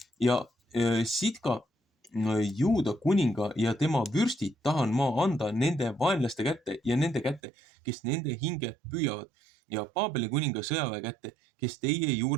Ja Sidka Juuda kuninga ja tema vürstid tahan ma anda nende vaenlaste kätte ja nende kätte, kes nende hinge püüavad ja Paabeli kuninga sõjaväe kätte, kes teie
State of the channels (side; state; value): left; drops out; at 7.4 s